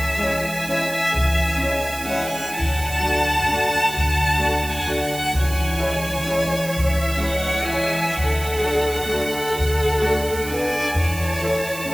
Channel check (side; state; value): right; noise; hiss, 11 dB below the sound